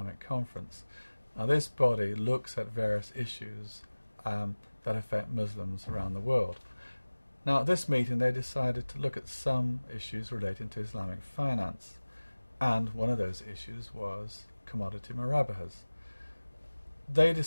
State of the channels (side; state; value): both; inverted; correlation -1.00